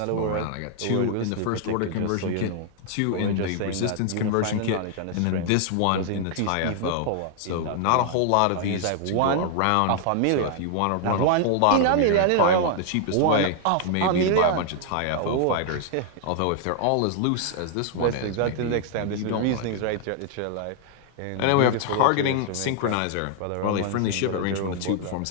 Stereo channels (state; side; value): different; both; correlation 0.00